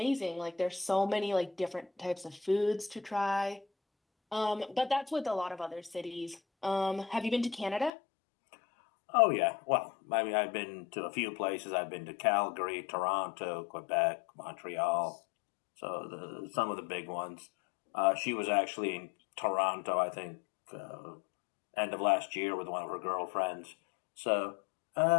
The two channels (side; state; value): right; drops out; at 7.9 s